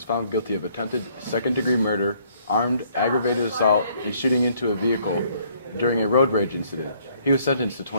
found guilty of attempted second-degree murder, armed, aggravated assault, and shooting into a vehicle during a road rage incident. He was sentenced to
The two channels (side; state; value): both; inverted; correlation -0.64